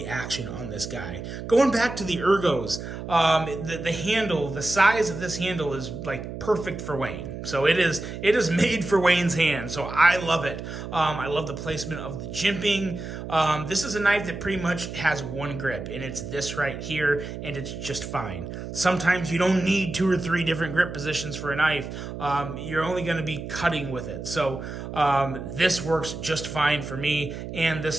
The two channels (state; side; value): noise; right; hum, 8 dB below the sound